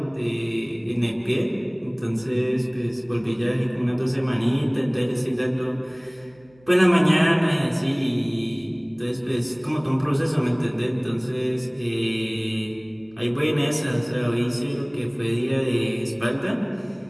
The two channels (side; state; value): right; noise; hum, 30 dB below the sound